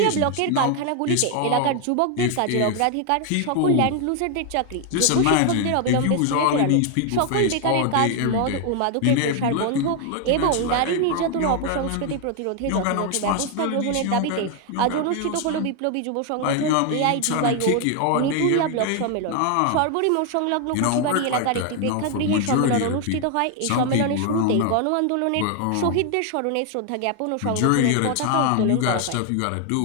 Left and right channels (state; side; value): different; both; correlation 0.01